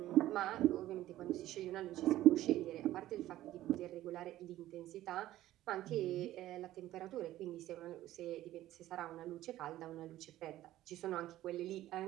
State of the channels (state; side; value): quieter; left; 14.5 dB